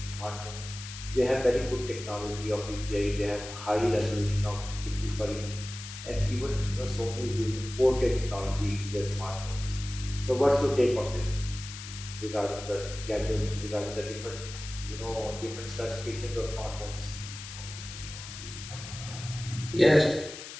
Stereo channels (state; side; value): noise; left; hiss, 11 dB below the sound